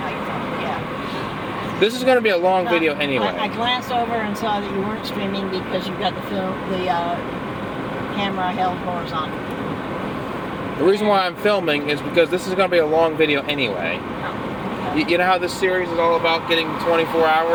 you're filming, yeah. This is going to be a long video anyway. I glanced over and saw that you weren't streaming because you've got the camera held horizontal. The reason why I'm filming is because this is going to be a long video anyway. You know how this series is all about getting 24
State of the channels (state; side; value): identical; both; correlation 1.00